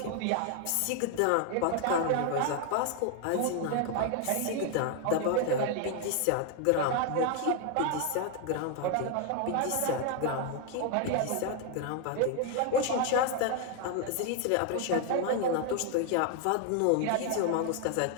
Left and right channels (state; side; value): different; both; correlation 0.00